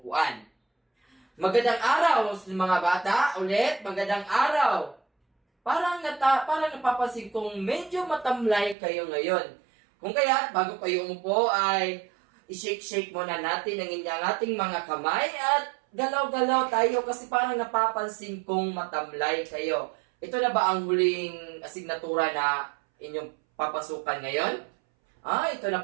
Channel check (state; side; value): drops out; left; at 8.8 s